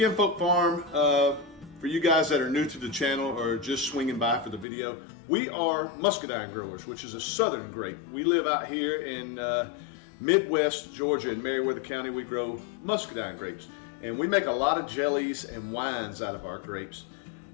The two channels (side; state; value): right; drops out; at 4.7 s